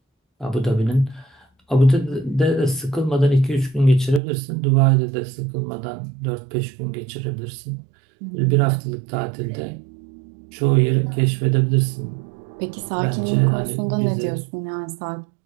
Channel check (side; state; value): left; drops out; at 4.2 s